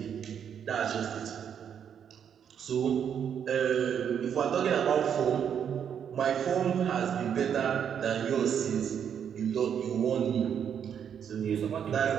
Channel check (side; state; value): left; quieter; 8.2 dB